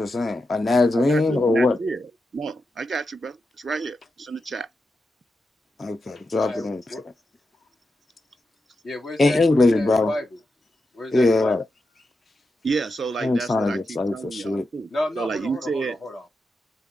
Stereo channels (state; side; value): normal; both; correlation 0.88